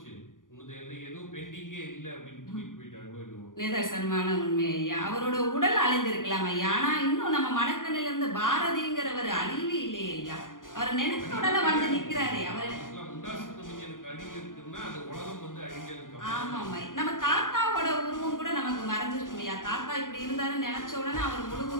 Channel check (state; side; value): late; right; 0.89 ms